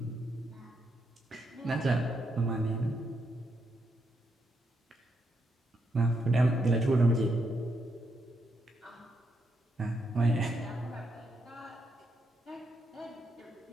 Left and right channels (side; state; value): both; normal; correlation 0.79